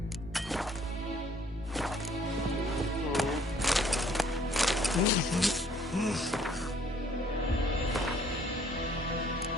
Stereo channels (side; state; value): both; normal; correlation 0.61